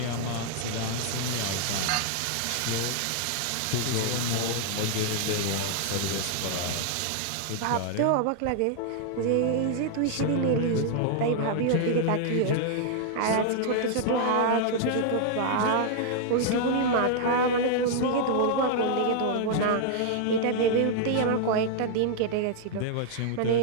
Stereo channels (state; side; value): different; both; correlation -0.01